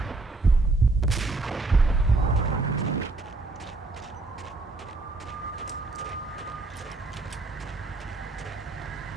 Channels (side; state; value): left; quieter; 3.3 dB